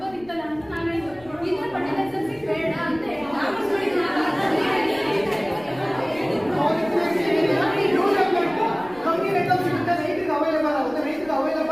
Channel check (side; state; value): left; noise; rumble, 25 dB below the sound